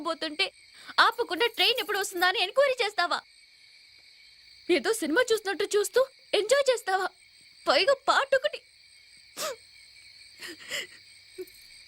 ఆపకుండా ట్రైన్ ఎప్పుడు వస్తుందా అని ఎంక్వైరీ చేస్తావా? ఏదో సినిమా చూస్తున్నట్టు చూస్తూ ఎంజాయ్ చేస్తావా? పైగా పాటొకటి.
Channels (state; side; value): identical; both; correlation 1.00